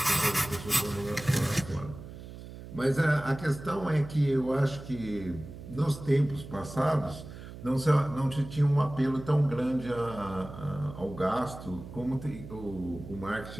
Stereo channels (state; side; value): noise; right; hum, 13 dB below the sound